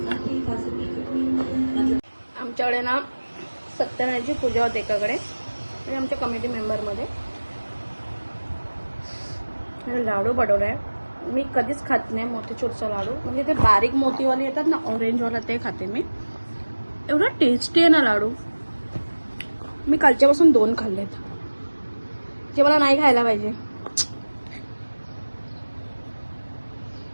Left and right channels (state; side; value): inverted; both; correlation -1.00